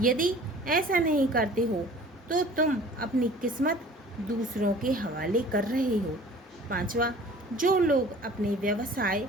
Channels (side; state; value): both; normal; correlation 0.47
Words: ऐसा नहीं करते हो तो तुम अपनी किस्मत दूसरों के हवाले कर रहे हो। पांचवा, जो लोग अपने व्यवसाय